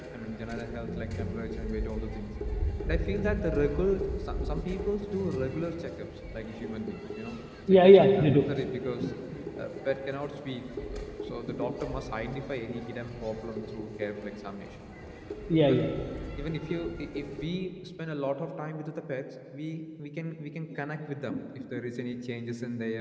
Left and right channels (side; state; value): both; identical; correlation 1.00